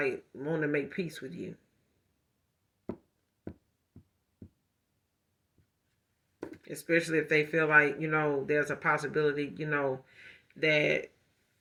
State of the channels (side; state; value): both; identical; correlation 1.00